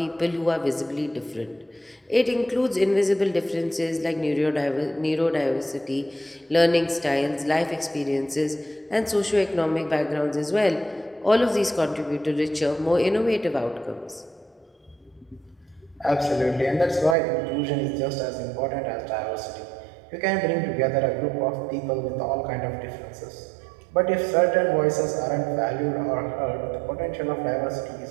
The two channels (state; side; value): drops out; left; at 17.2 s